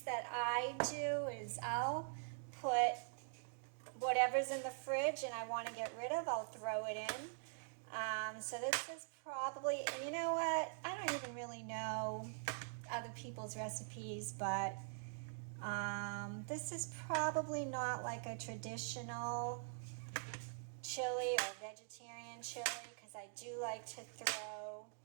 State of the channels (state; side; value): silent; left; digital silence